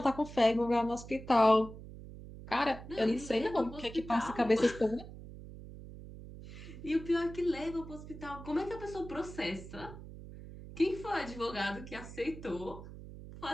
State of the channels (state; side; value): noise; right; hum, 14 dB below the sound